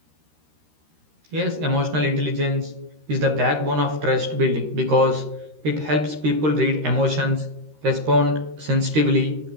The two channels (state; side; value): late; left; 13 ms